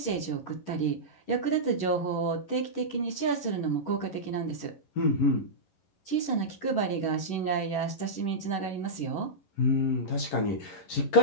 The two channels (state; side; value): late; right; 11 ms